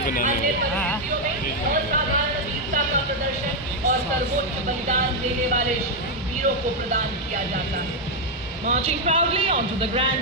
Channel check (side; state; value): both; normal; correlation 0.01